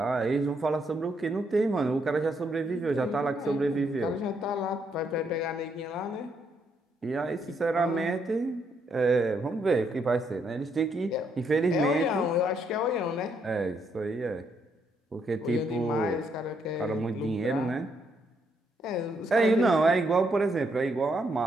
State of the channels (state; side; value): normal; both; correlation 0.75